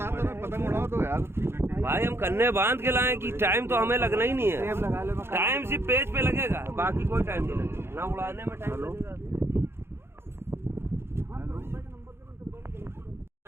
भाई हम कन्ने बांध के लाए कि time तो हमें लगना ही नहीं है। टाइम सिर्फ पेज पे लगेगा, बाकी कोई टाइम नहीं लगेगा, ना उड़ाने में टाइम लगेगा।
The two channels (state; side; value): late; left; 0.12 ms